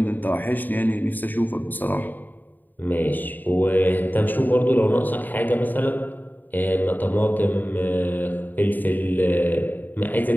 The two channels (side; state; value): right; late; 0.088 ms